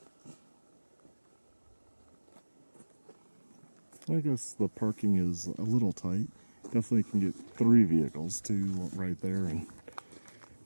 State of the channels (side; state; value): both; inverted; correlation -1.00